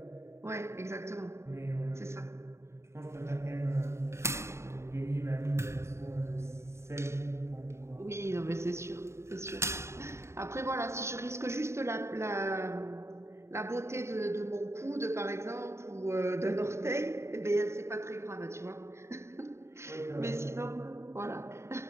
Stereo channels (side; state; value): left; late; 0.13 ms